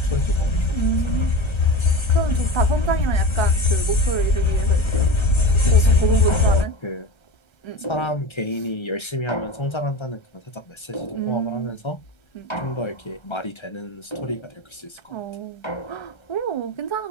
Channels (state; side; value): late; right; 1.3 ms